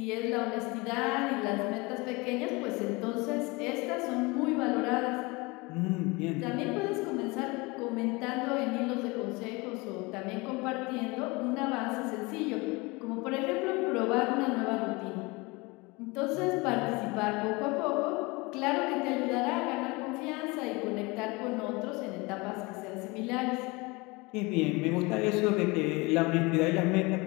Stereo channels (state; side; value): quieter; right; 25.2 dB